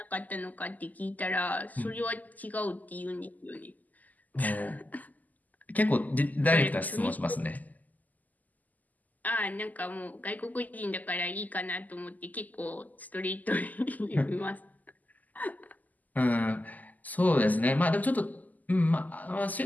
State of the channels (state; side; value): late; right; 0.081 ms